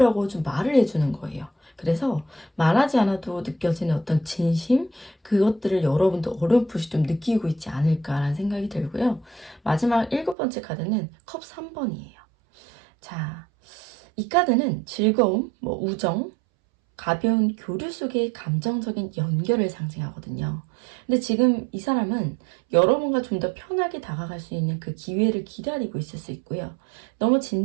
좀 말을 해주는 거예요. 그래서 말하지 않아도 느껴지는 어떤 진심, 그것들을 여러분도 어렴풋이 좀 느끼고 있지 않을까라는 생각이 들고요. 마지막 일곱 번째 카드는 컵 3번이에요. 자, 이 카드는 즐거움, 우정, 가벼운 교류 속의 감정적인 연결을 상징하거든요. 근데 지금 이 사람은 여러분과 좀 더 편하게 다가갈 수 있는 그 기회를 기다리고 있을 수 있고요. 너무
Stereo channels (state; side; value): drops out; left; at 10.4 s